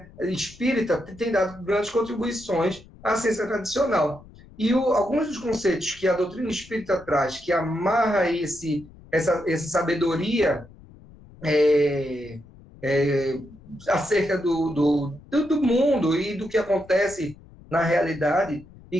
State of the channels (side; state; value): left; noise; rumble, 22 dB below the sound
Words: espírita tem dado grandes contribuições à ciência tradicional. E alguns dos conceitos que a doutrina espírita traz, que amarra essa sabedoria acerca do mundo e do que acontece na realidade e